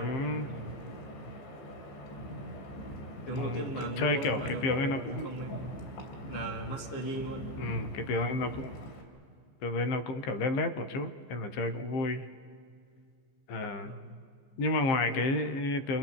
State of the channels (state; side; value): late; right; 15 ms